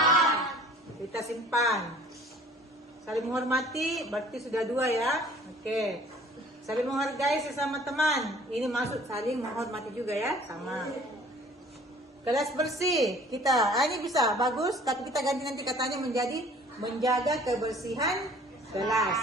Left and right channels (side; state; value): both; normal; correlation 0.51